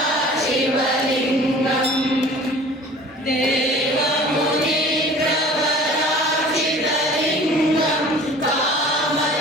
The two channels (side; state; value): both; normal; correlation 0.45